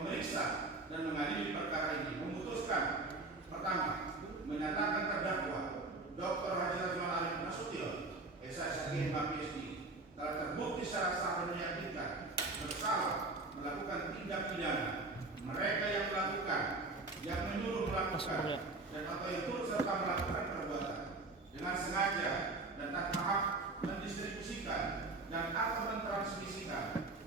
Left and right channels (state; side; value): quieter; left; 3.3 dB